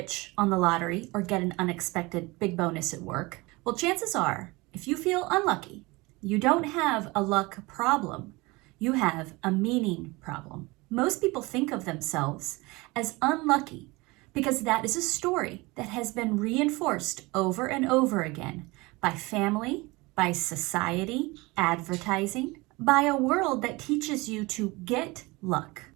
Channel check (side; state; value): left; quieter; 23.5 dB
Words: on the lottery or get an unexpected big bonus at work? Well, chances are, if you feel unlucky, you don't have a luck problem. You have a meaning problem. Most people think of themselves as unlucky because that is a story that has been reinforced over and over again by family, by society, advertising, by a world that teaches you to get luck,